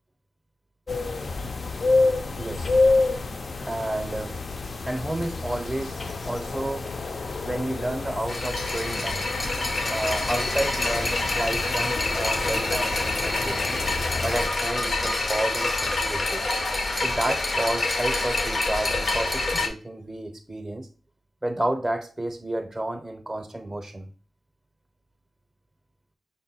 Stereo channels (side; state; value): both; normal; correlation 0.93